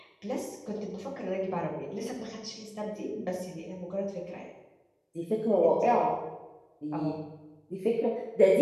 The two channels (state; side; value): identical; both; correlation 1.00